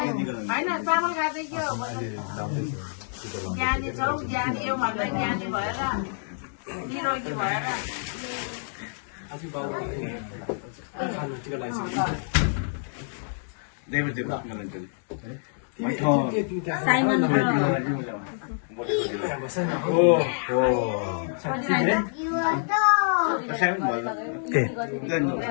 होइन चामल खाँदै के हो ज्ञानी छौ ज्ञानी यो भन्दा ज्ञानी भएर निरोगी भएर म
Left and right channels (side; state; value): right; silent; digital silence